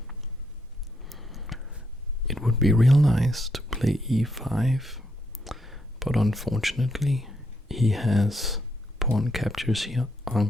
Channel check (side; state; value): both; normal; correlation 0.77